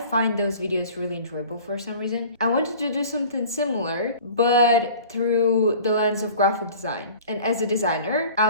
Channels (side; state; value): both; inverted; correlation -0.44